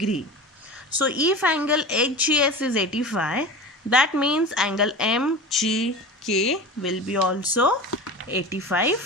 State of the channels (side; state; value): both; normal; correlation 0.32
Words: So if angle HGS is 85, that means angle MGK will be also